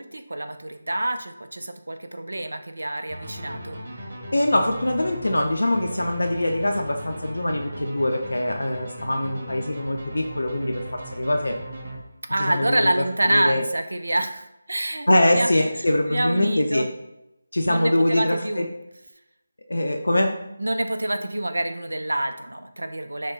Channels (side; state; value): both; inverted; correlation -0.96